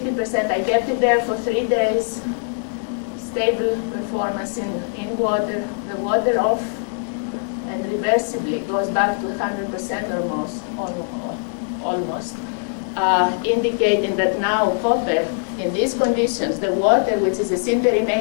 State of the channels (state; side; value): silent; right; digital silence